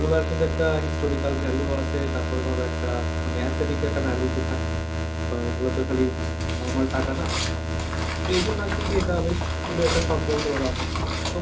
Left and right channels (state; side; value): identical; both; correlation 1.00